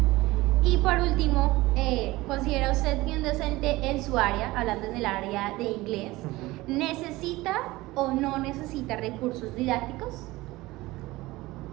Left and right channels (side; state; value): left; quieter; 19.5 dB